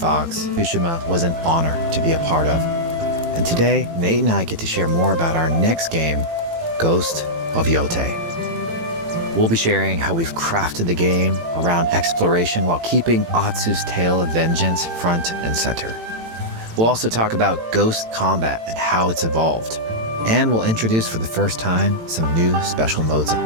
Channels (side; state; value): left; late; 18 ms